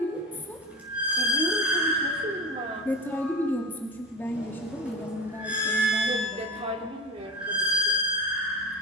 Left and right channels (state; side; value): normal; both; correlation 0.28